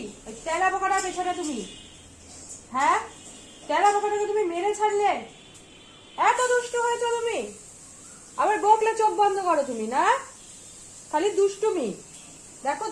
ওই তেলা পোকাটা পেছনে তুমি। হ্যাঁ, তেলা পোকাটাকে তুমি মেরে ছাড়লে, এত দুষ্টু হয়েছো তুমি। আবার বকলে চোখ বন্ধ করো তুমি, না খালি দুষ্টুমি। দেখো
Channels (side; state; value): both; identical; correlation 1.00